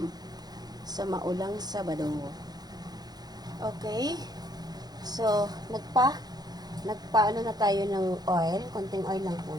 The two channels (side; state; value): left; late; 0.19 ms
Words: sa maulang Sabado. Okay. So, nagpaano na tayo ng oil. Konting oil lang